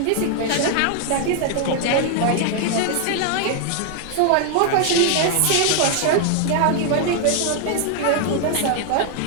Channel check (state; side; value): different; both; correlation 0.00